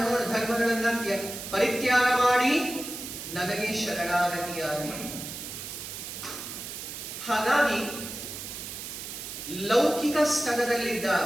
ಧರ್ಮಗಳನ್ನ ಪರಿತ್ಯಾಗ ಮಾಡಿ ನನಗೆ ಶರಣಾಗತಿಯಾಗಿ. ಹಾಗಾಗಿ ಲೌಕಿಕ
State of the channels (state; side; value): noise; right; hiss, 8 dB below the sound